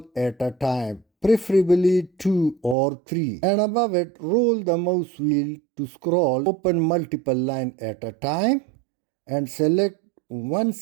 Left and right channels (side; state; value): left; drops out; at 2.8 s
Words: at a time, preferably 2 or 3. And above it, roll the mouse wheel to scroll, open multiple lines at a time and select one